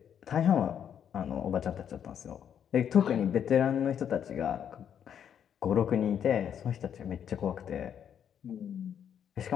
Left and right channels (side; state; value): right; quieter; 8.7 dB